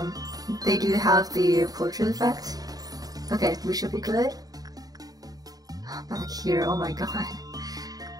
they do have the portrait effect. Okay, we should be good. Back here, oh my god.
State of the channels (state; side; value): late; left; 0.18 ms